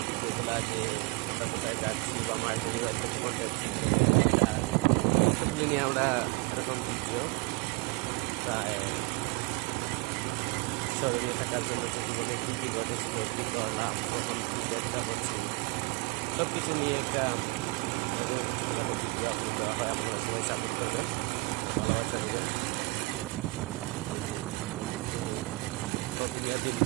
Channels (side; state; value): left; quieter; 25.2 dB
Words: যেগুলো যে আমরা কোথায় যাচ্ছি বা মার্কেটে যাচ্ছি সবজি নিয়ে আমরা এরকম ভিডিও প্রায় স্মরণীয় থাকার জন্য কিছু বলে কী ঘটেছিল, কী করলাম, কখন কী চেষ্টা করছি, সব কিছু নিয়ে একটা ছোটোখাটো ভিডিও আপলোড দেওয়া হয়। আপনারা সবাই সাপোর্ট করবেন, ভালোবাসা দেবেন।